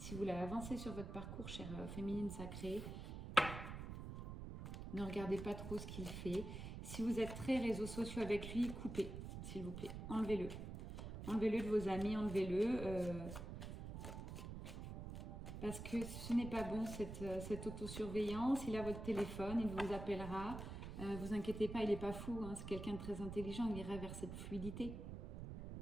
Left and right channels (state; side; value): noise; right; rumble, 7 dB below the sound